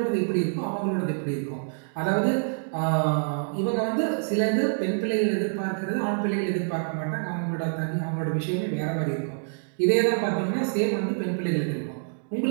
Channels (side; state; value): left; silent; digital silence